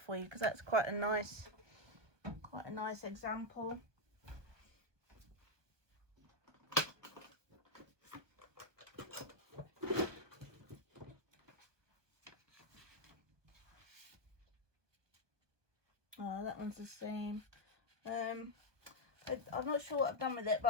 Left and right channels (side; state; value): left; late; 1.2 ms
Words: for you, because that's quite a nice example. Oh, that one's the same. I'm not sure what I've done with it,